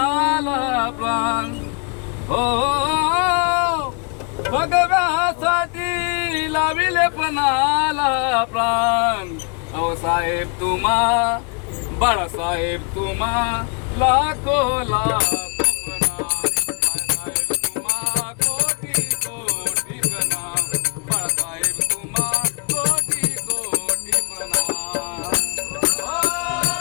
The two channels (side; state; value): right; quieter; 36.9 dB